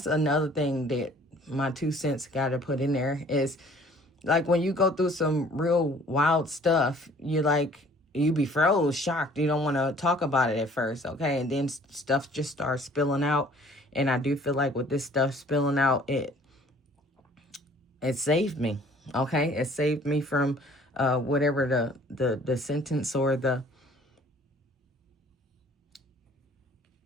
another thing that my 2 cents got to put in there is, like, when you go through some real wild stuff, you be froze, shocked. You don't want to talk about it at first, okay? And then stuff just starts spilling out. And I do feel like with this stuff spilling out, it saved me, okay? It saved me from whatever the sentence or the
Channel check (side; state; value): both; normal; correlation 0.54